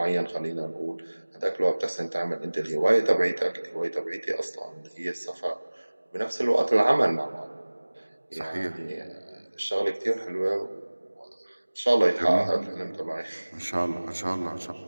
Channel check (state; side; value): inverted; both; correlation -1.00